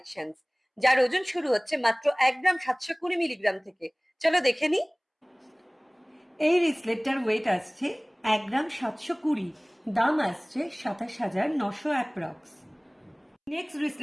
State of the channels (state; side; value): identical; both; correlation 1.00